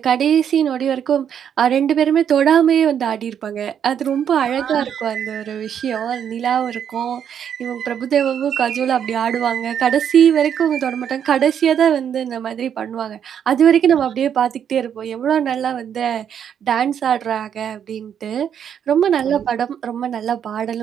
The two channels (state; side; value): quieter; left; 8.6 dB